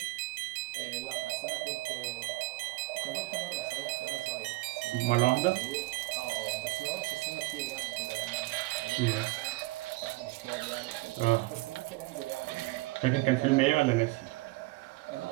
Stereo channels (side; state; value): left; quieter; 21.9 dB